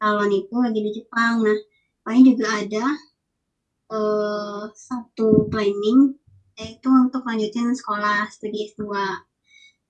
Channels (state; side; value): identical; both; correlation 1.00